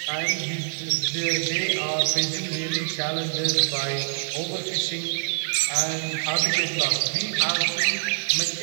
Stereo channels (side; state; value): left; silent; digital silence